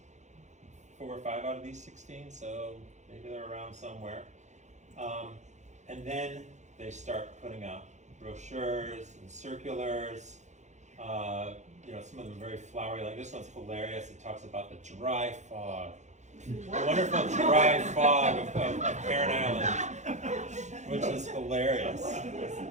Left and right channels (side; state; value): left; late; 0.34 ms